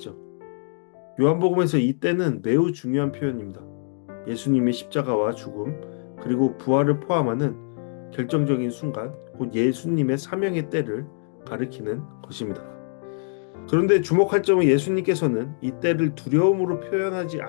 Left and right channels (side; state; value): right; silent; digital silence